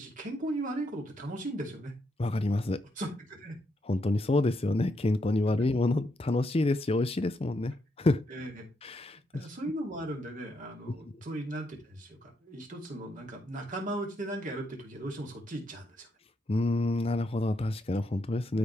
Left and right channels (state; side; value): normal; both; correlation 0.79